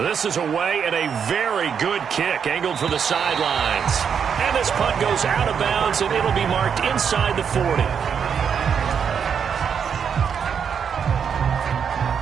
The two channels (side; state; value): left; quieter; 7.2 dB